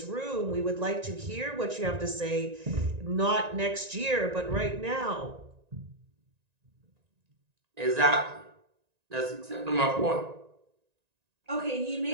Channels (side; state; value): left; late; 1.9 ms